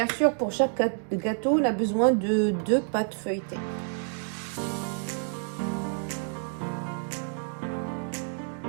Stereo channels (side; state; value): left; silent; 55 dB below the other